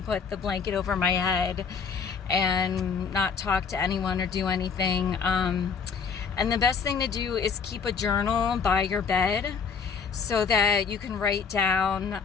put the blanket over my head and not talk to anyone or do anything. And the best thing to do is keep a journal by your bed so that you can write down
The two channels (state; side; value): quieter; right; 5.9 dB